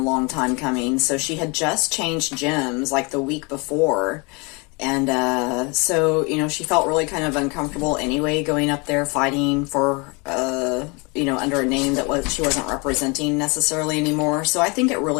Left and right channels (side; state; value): right; quieter; 29.5 dB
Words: long time coming. So she had just changed gyms like the week before. And, so, she felt really kind of uncomfortable anyway, going up there fighting for, under a name that she wasn't representing necessarily anymore. So I think it